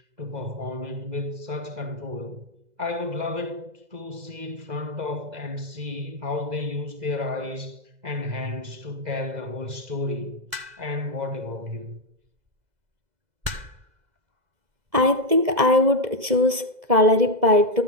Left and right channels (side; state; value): left; late; 2.0 ms